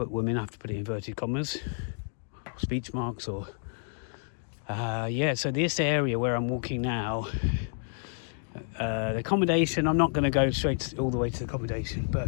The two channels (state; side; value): silent; right; 58 dB below the other